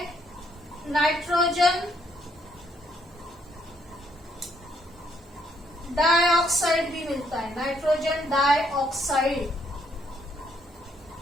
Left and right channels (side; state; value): both; normal; correlation 0.71